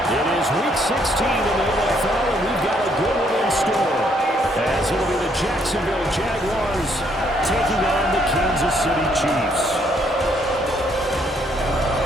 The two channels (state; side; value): normal; both; correlation 0.69